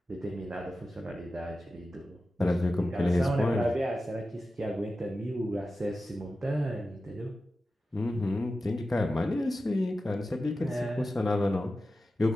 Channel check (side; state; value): both; normal; correlation 0.93